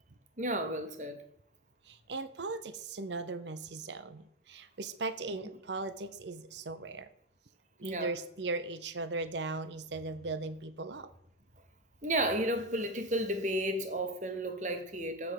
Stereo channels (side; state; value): both; normal; correlation 0.09